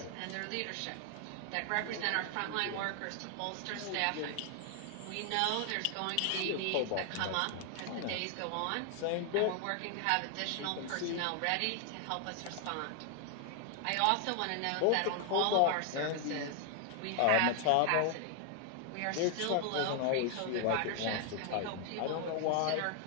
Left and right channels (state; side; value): different; both; correlation 0.00